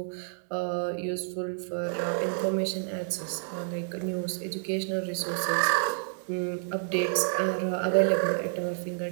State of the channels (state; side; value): silent; left; digital silence